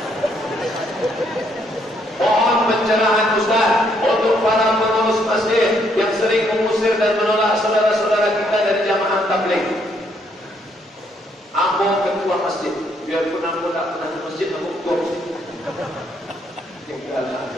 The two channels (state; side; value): normal; both; correlation 0.71